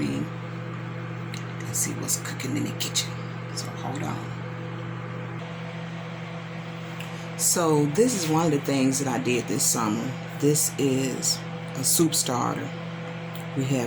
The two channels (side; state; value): both; identical; correlation 1.00